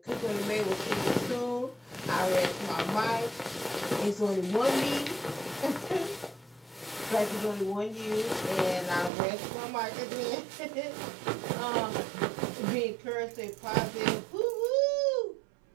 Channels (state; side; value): drops out; left; at 9.1 s